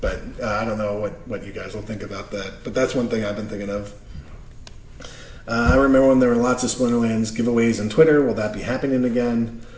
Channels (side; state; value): both; identical; correlation 1.00